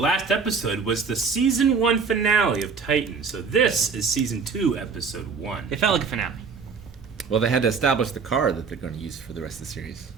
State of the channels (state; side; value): quieter; left; 5.4 dB